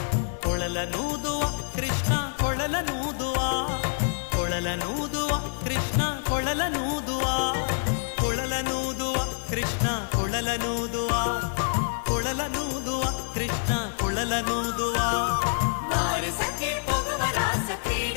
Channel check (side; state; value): right; silent; digital silence